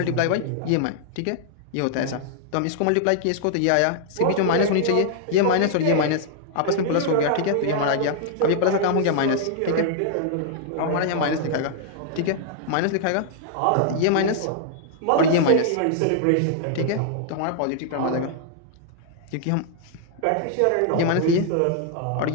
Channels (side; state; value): both; different; correlation -0.01